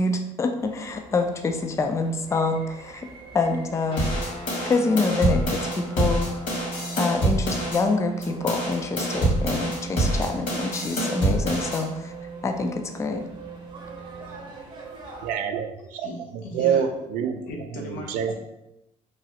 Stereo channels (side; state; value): both; normal; correlation 0.59